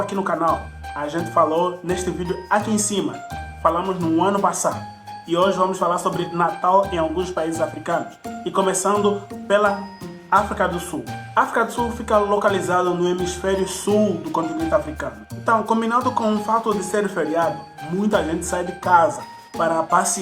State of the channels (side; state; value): both; identical; correlation 1.00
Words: no canal. A gente falou neste vídeo aqui em cima. Falamos no ano passado. E hoje vamos falar sobre Natal em alguns países africanos. E começando pela África do Sul. A África do Sul fica localizada no hemisfério sul do continente africano. Então, combinado com o fato de ser feriado, muita gente sai de casa para